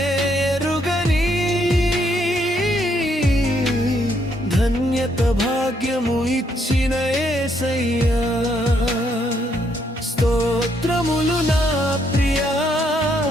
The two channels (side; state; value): both; normal; correlation 0.73